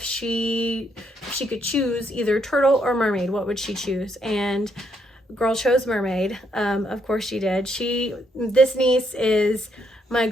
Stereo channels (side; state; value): both; normal; correlation 0.74